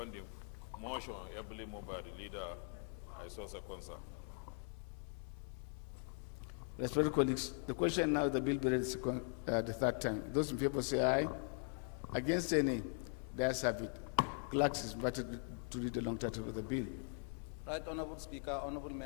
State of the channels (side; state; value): right; silent; 50 dB below the other